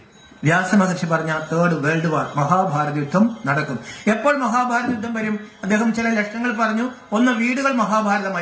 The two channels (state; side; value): identical; both; correlation 1.00